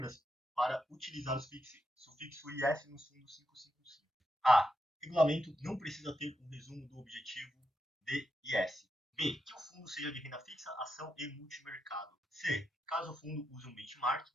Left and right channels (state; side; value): normal; both; correlation 0.84